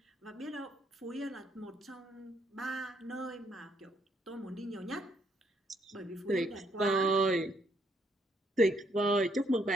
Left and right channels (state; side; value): normal; both; correlation 0.71